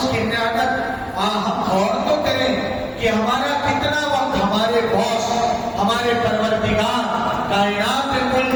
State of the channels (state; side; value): identical; both; correlation 1.00